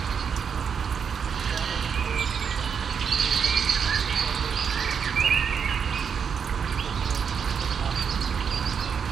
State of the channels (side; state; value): left; quieter; 6.8 dB